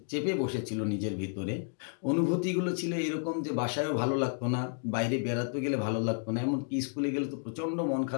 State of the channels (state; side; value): silent; right; 57 dB below the other